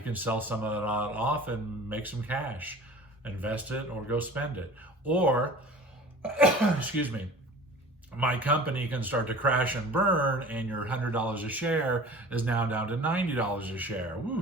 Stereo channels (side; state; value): both; normal; correlation 0.42